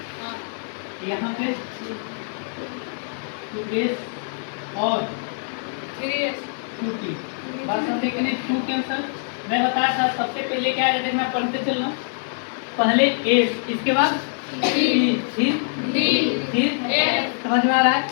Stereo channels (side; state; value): right; silent; 60 dB below the other